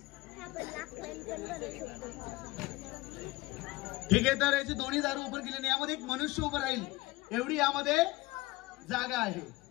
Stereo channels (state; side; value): quieter; right; 20.7 dB